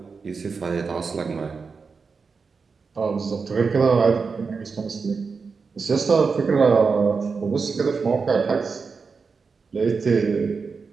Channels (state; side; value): quieter; left; 5.0 dB